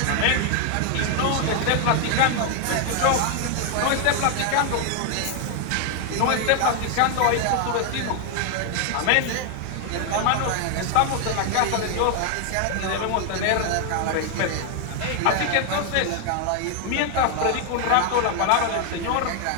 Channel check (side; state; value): both; different; correlation 0.00